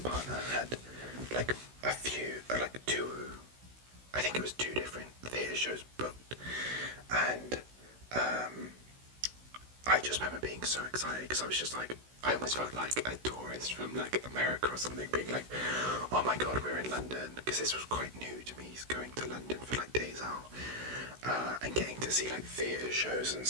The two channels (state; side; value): late; left; 16 ms